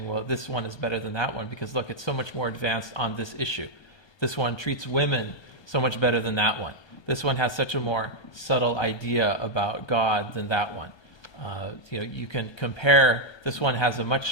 well, this one is better than that one, because look, it's so much more advanced on this issue. This one treats women so much better than that one. This one has such a more subtle idea about God than that one. You can compare, this one has a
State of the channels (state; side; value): late; right; 1.2 ms